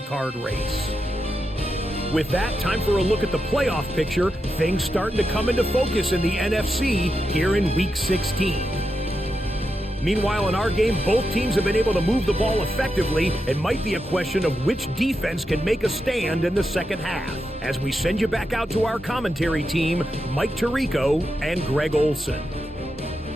race. With that, time for a look at the playoff picture. Things starting to come into focus in the NFC here in Week 16. Meanwhile, in our game, both teams have been able to move the ball effectively. It might be a question of which defense can make a stand in the second half. As we send you back out to our commentary team, Mike Tirico and Greg Olson.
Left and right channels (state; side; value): normal; both; correlation 0.87